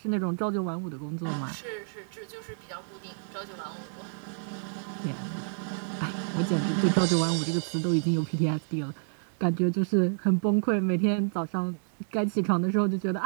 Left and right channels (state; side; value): silent; left; digital silence